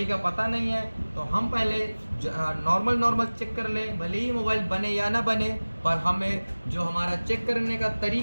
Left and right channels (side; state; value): both; inverted; correlation -1.00